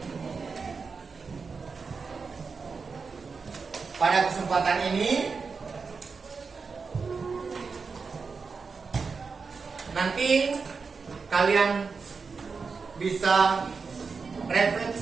Pada kesempatan ini nanti kalian bisa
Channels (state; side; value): quieter; left; 4.9 dB